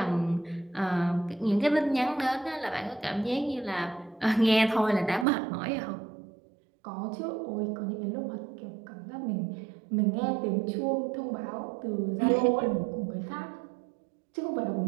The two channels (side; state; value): left; drops out; at 5.2 s